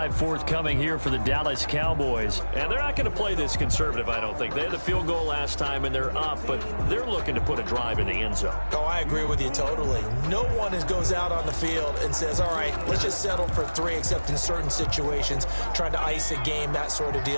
forthcoming here for the Dallas Cowboys. And they're not going to play this conservative, I don't think. They had the field goal last time, and they're up, but they're looking to put a drive in the end zone. Oh, I agree with you totally. No one goes out on the field and says, all right, let's just settle for 3, except in certain situations, trying to ice a game, that sort of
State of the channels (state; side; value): inverted; both; correlation -1.00